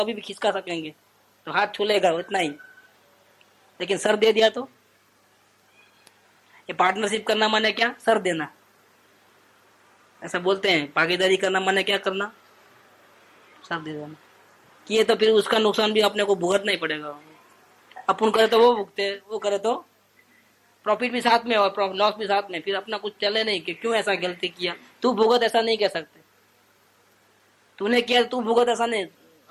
भी खिसका सकेंगे, तो हाथ छूलेगा उतना ही, लेकिन सर दे दिया तो। ये पार्टनरशिप करना माने क्या? सर देना, ऐसा बोलते हैं। भागीदारी करना माने क्या करना? सर दे देना। किए तो फिर उसका नुकसान भी अपने को भुगतना ही पड़ेगा। अपन करे तो वो भुगते, वो करे तो प्रॉफिट भी साथ में और लॉस भी साथ में, फिर अपना कुछ चले नहीं कि क्यों ऐसा गलती किया। तू भुगत, ऐसा नहीं कह सकते। तूने किया तू भुगत, ऐसा नहीं,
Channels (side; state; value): both; identical; correlation 1.00